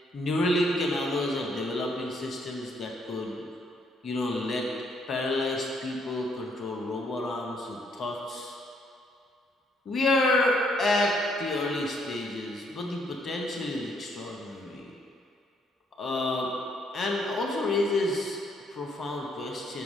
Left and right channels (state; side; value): normal; both; correlation 0.70